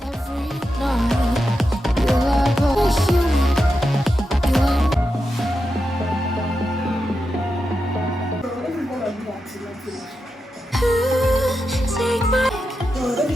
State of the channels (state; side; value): normal; both; correlation 0.88